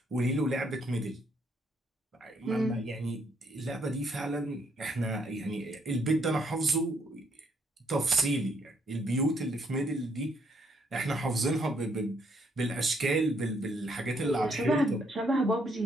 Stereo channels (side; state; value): both; normal; correlation 0.72